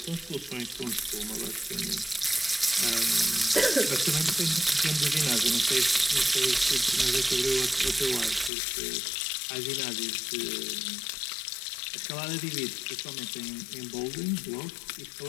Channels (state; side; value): drops out; right; at 8.5 s